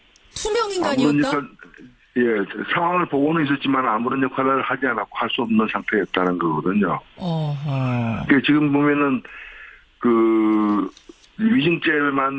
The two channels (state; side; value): identical; both; correlation 1.00